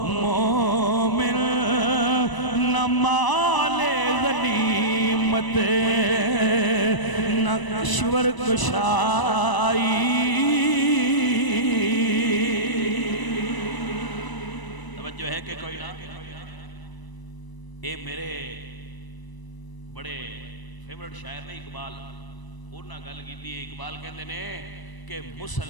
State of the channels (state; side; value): late; right; 1.0 ms